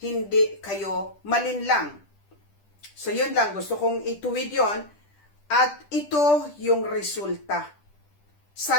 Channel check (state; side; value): late; right; 10 ms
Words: hindi kayo malinlang. So, yun lang. Gusto kong ituwid yon. At ito yung resulta.